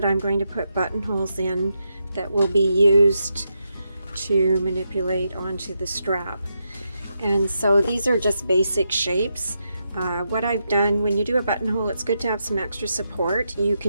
I'm going to put buttonholes in that will be used to manipulate onto the strap. And so these are just basic shapes. What I've done, when you do a buttonhole, it's good to have some extra support. You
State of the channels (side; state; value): both; inverted; correlation -0.83